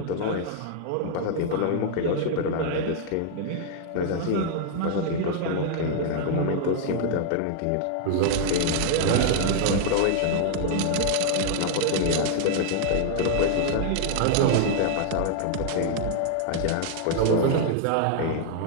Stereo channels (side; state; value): both; different; correlation 0.00